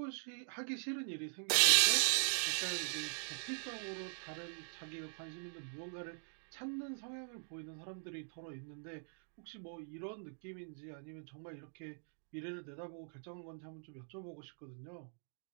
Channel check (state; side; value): silent; left; digital silence